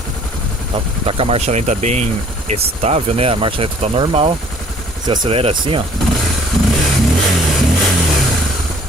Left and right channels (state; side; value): normal; both; correlation 0.56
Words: tá com a marcha lenta bem estável, né? A marcha lenta tá normal. Você acelera assim, ó,